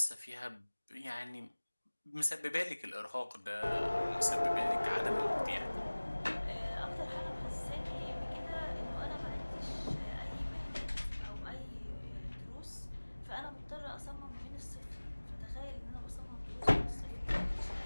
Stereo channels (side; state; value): both; inverted; correlation -1.00